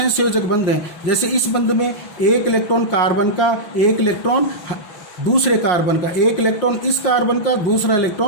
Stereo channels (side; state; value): right; late; 5.6 ms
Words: बंध हैं। जैसे इस बंध में 1 इलेक्ट्रॉन कार्बन का, 1 इलेक्ट्रॉन दूसरे कार्बन का, 1 इलेक्ट्रॉन इस कार्बन का, दूसरा